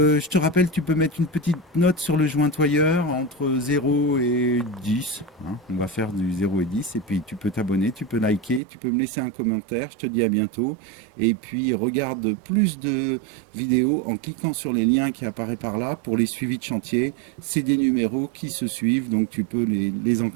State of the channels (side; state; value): left; drops out; at 8.6 s